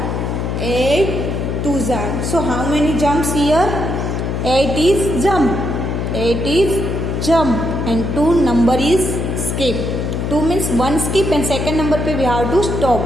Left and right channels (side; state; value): left; noise; hum, 2 dB below the sound